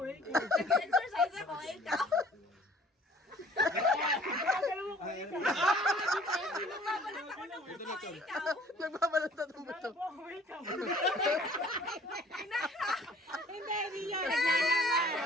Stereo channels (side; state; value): both; normal; correlation 0.53